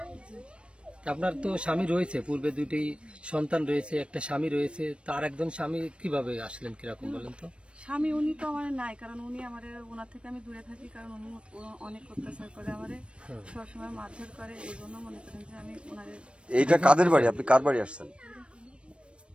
আপনার তো স্বামী রয়েছে, পূর্বে দুটি সন্তান রয়েছে, একটা স্বামী রয়েছে, তার একজন স্বামী কিভাবে আসলেন, কিরকম বলেন তো? স্বামী উনি তো আমার নাই, কারণ উনি আমার ওনার থেকে আমি দূরে থাকি, কারণ উনি অনেক অত্যাচার করে আমারে, সবসময় মারধর করে, এই জন্য মনে করেন যে আমি ওনারে। এইটা কাদের বাড়ি, আপনি কার বাড়ি আসছেন?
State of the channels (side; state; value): left; late; 0.059 ms